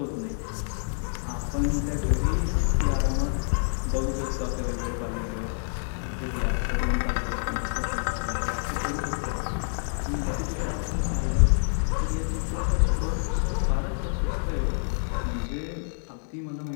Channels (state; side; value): silent; right; digital silence